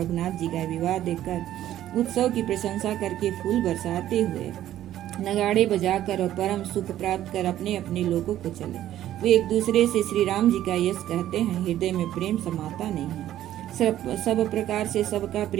जी का विवाह देखकर उत्सव की प्रशंसा करके फूल बरसाते हुए नगाड़े बजाकर और परम सुख प्राप्त कर अपने अपने लोगों को चले। वे एक दूसरे से श्री राम जी का यश कहते हैं। हृदय में प्रेम समाता नहीं है। सब प्रकार से सबका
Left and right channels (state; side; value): quieter; left; 12.6 dB